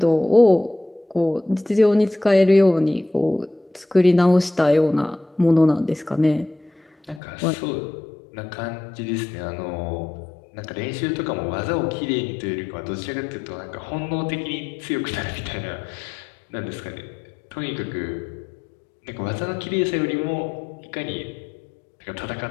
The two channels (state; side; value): drops out; right; at 7.2 s